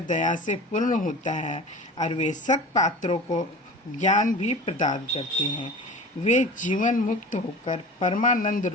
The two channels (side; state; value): both; normal; correlation 0.36